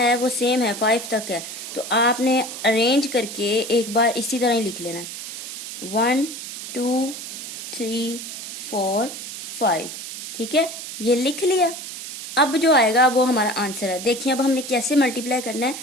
वो सेम है, 5 तक है, तो आपने अरेंज करके एक बार इसी तरह ही लिख लेना है 1 2 3 4 5, ठीक है। ये लिख लिया। अब जो आएगा वो हमारा आंसर है। देखिए अब हमने कैसे मल्टीप्लाई करना है।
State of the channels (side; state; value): right; noise; hiss, 9 dB below the sound